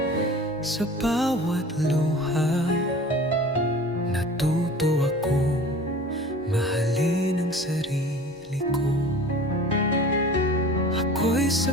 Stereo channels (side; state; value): both; normal; correlation 0.41